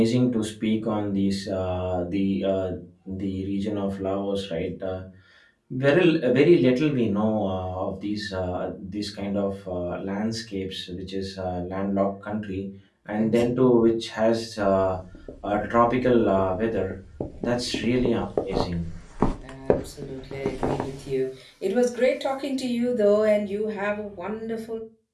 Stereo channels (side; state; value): both; identical; correlation 1.00